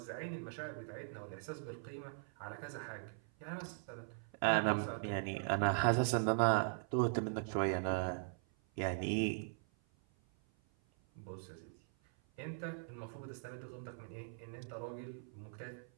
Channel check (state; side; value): silent; left; 51 dB below the other